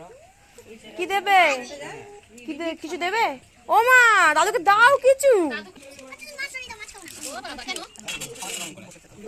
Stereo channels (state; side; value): identical; both; correlation 1.00